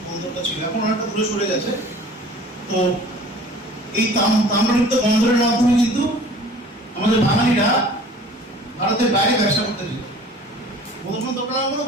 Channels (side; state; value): both; normal; correlation 0.47